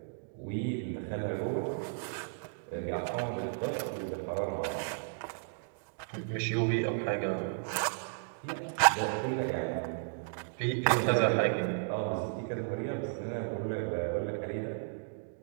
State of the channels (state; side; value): silent; left; digital silence